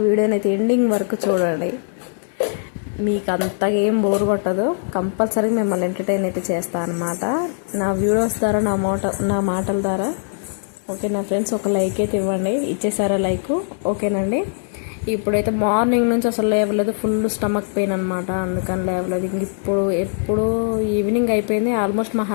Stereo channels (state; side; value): silent; right; 65 dB below the other